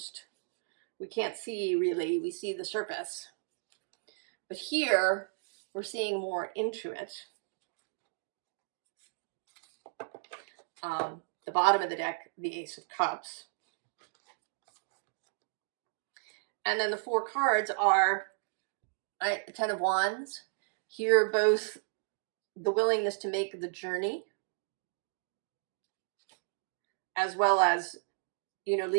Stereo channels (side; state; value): left; silent; digital silence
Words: We can't see really, we see the surface. But here, we're seeing more into it. The bottom of the deck, the Ace of Cups. And then the four cards are the Ten of Wands. Here, both the willingness to make the journey, as well as,